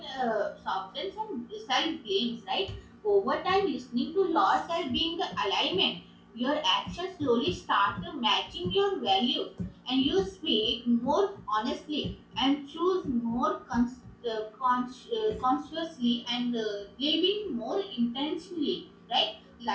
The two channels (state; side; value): identical; both; correlation 1.00